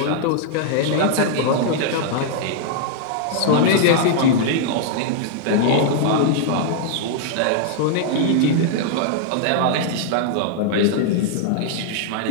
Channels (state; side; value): different; both; correlation -0.01